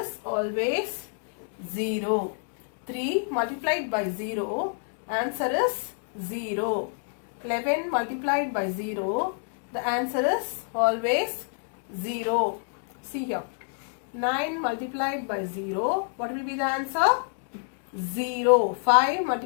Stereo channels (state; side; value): silent; right; 59 dB below the other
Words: always 0. 3 multiplied by 0, answer is 0. 11 multiplied by 0, the answer is always 0. See here. 9 multiplied by 0, what will be the answer? 0. 5